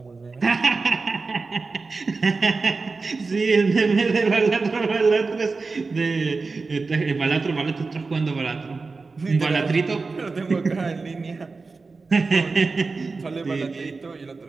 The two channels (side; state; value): left; quieter; 4.1 dB